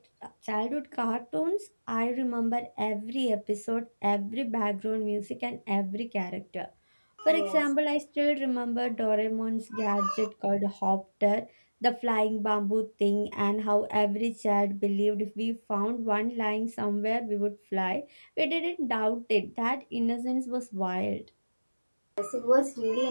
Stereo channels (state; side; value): inverted; both; correlation -1.00